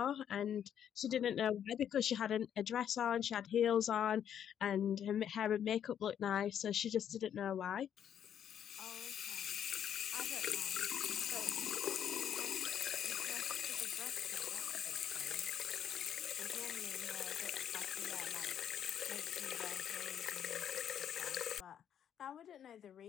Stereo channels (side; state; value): right; quieter; 9.3 dB